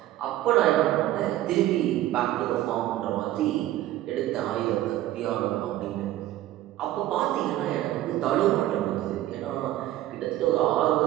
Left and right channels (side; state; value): left; quieter; 14.3 dB